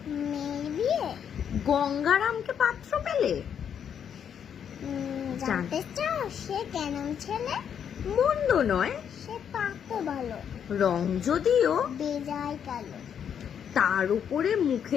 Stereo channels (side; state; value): right; quieter; 8.3 dB